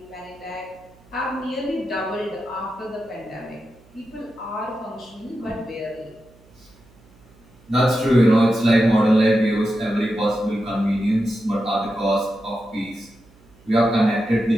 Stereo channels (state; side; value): noise; right; hum, 28 dB below the sound